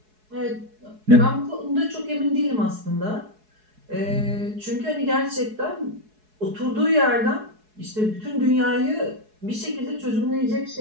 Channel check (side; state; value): left; late; 4.7 ms